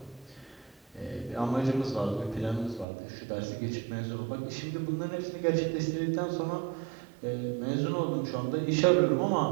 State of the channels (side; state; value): left; drops out; at 2.9 s